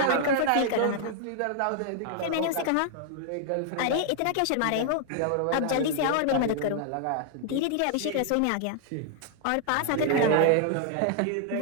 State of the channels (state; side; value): different; both; correlation 0.00